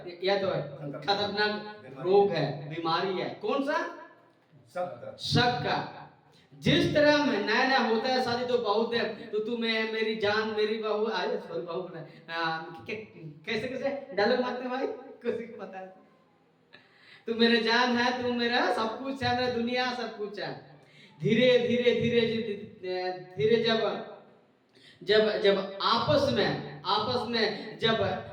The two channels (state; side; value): identical; both; correlation 1.00